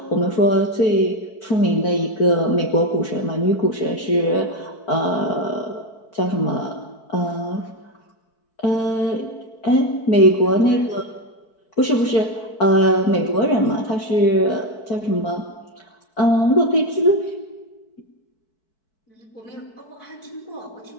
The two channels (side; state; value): right; late; 4.6 ms